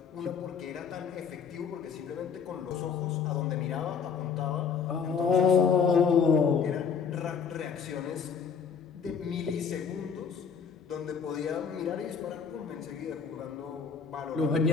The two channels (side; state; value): right; quieter; 6.4 dB